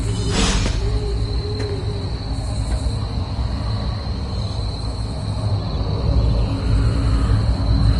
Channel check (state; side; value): identical; both; correlation 1.00